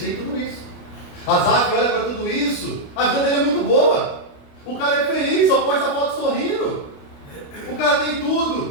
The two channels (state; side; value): late; right; 29 ms